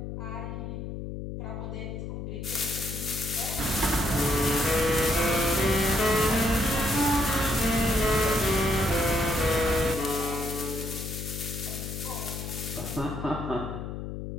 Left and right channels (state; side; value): noise; left; hum, 7 dB below the sound